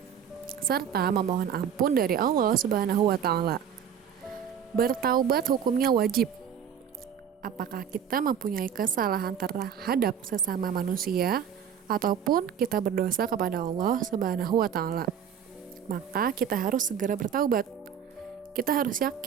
serta memohon ampun dari Allah Subhanahu wa Ta'ala. Bertaubat hukumnya wajib. Apakah kita mempunyai kesalahan terhadap sesama manusia ataupun kita berdosa kepada Allah Subhanahu wa Ta'ala, maka kita harus segera bertaubat. Kita harus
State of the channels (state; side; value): quieter; left; 8.3 dB